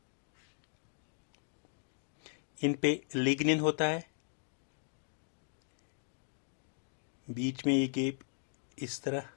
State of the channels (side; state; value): right; silent; digital silence